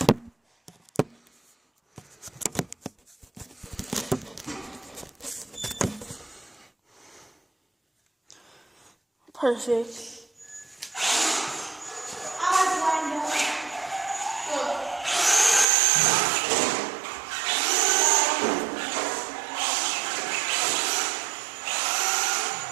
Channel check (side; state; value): left; drops out; at 15.7 s